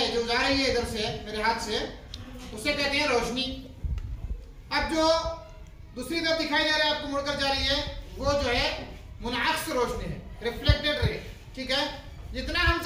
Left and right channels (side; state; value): both; identical; correlation 1.00